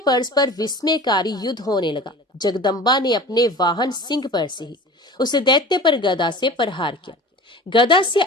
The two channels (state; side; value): normal; both; correlation 0.38